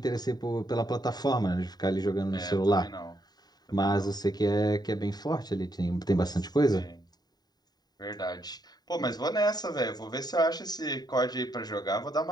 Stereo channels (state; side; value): late; right; 0.20 ms